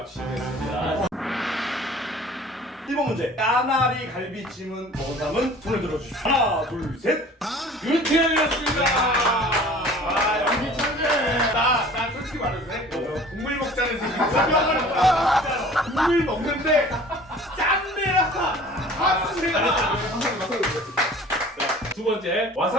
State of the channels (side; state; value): both; normal; correlation 0.46